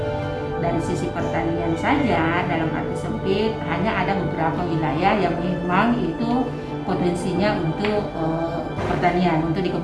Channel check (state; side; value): identical; both; correlation 1.00